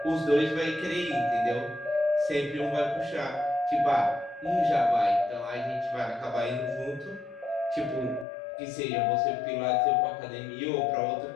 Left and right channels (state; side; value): drops out; right; at 8.2 s